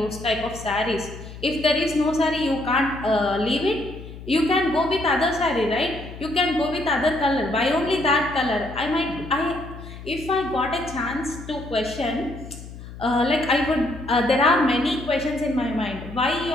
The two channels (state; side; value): noise; left; hum, 14 dB below the sound